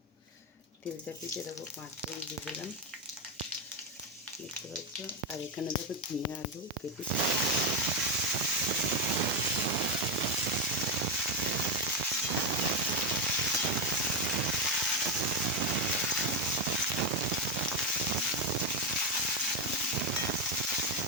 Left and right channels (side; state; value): both; normal; correlation 0.09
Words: তেল চাপিয়ে দেখো 5 ফোড়ন দিয়ে দিলাম, দেখতে পাচ্ছ। আর এখানে দেখো ঝিঙে আলু কেটে দেবে।